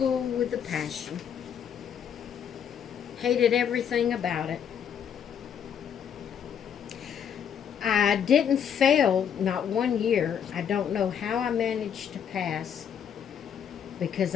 with a passion. Hated everything about it. I didn't fail, not one year. I don't know how I managed to pass because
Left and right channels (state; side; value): quieter; right; 8.2 dB